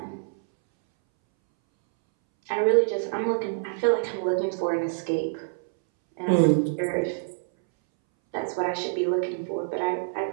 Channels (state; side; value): silent; left; 61 dB below the other